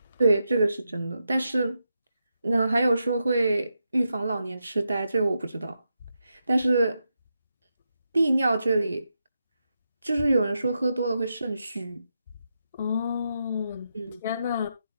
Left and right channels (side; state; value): both; inverted; correlation -0.85